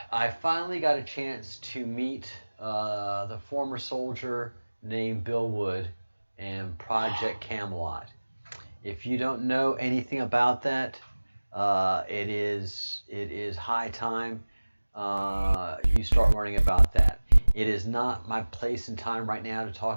I finally got a chance to meet the former soldier named Bill Wood and Project Camelot. If you don't know anything about that, it is high time you start learning about that. It is not my place and time right now to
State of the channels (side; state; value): both; inverted; correlation -1.00